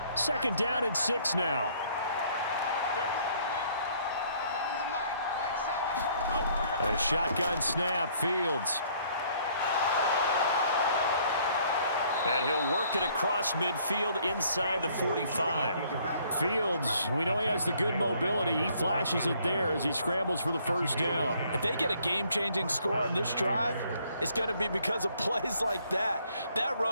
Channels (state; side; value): inverted; both; correlation -0.63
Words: Second down and 6 now. A shotgun snap, Fields. And he'll work it across midfield inside the 45. Fields, we know he has the good mobility. He flashes it there as he scrambles for the first down. If they get a game-changing score on this drive, it's going to be because of plays like that. That